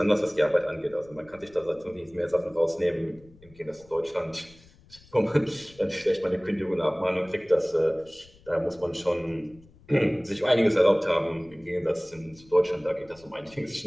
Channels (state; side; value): noise; left; rumble, 26 dB below the sound